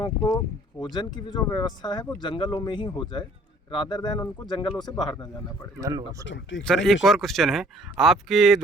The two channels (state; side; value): normal; both; correlation 0.56